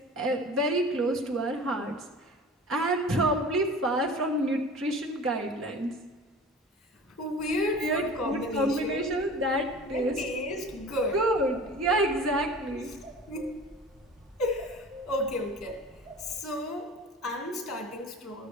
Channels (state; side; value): normal; both; correlation 0.40